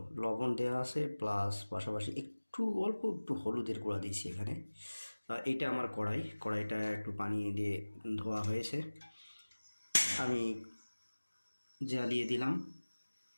লবণ দেওয়া আছে, প্লাস পাশাপাশি অল্প একটু হলুদের গুঁড়া দিয়েছি এখানে। এইটা আমার কড়াইটা একটু পানি দিয়ে ধোয়া হয়েছে, আমি জ্বালিয়ে দিলাম।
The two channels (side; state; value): both; inverted; correlation -1.00